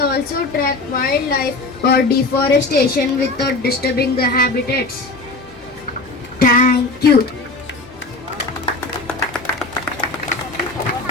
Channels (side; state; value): right; quieter; 3.2 dB